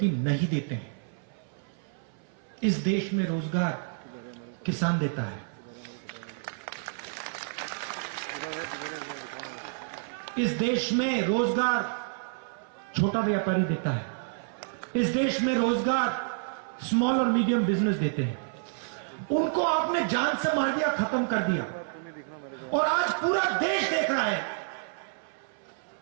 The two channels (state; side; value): silent; left; 58 dB below the other